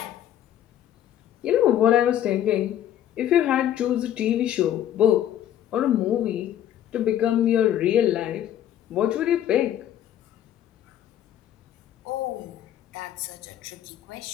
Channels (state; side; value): quieter; right; 11.1 dB